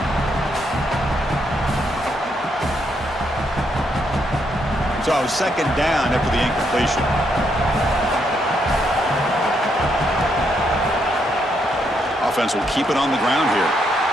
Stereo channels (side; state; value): both; normal; correlation 0.76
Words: So 2nd down after the incompletion. Offense will keep it on the ground here.